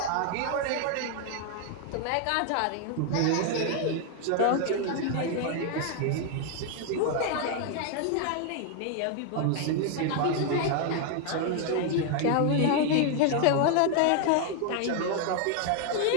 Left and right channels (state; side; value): different; both; correlation 0.00